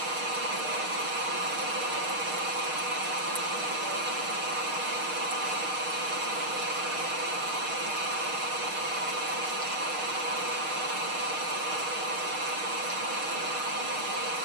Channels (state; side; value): late; left; 6.5 ms